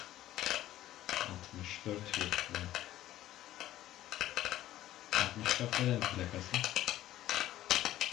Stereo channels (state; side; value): quieter; right; 13.9 dB